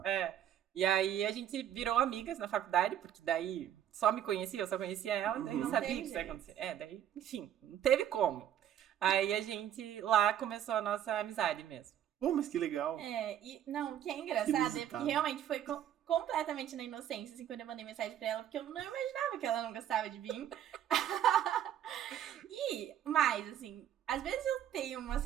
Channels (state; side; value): quieter; left; 10.6 dB